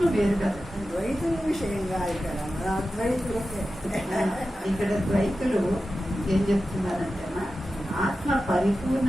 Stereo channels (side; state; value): both; normal; correlation 0.93